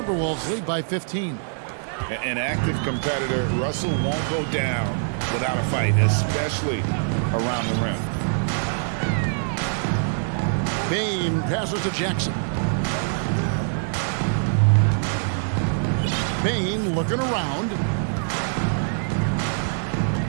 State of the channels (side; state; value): left; silent; digital silence